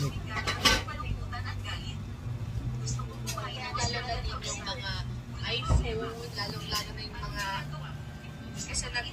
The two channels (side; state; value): both; identical; correlation 1.00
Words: iPhone, lalong-lalo na yung mga, kasi